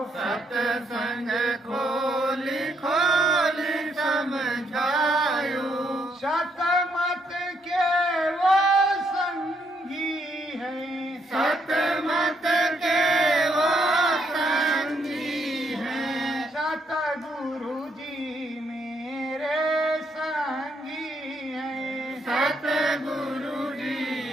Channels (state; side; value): normal; both; correlation 0.74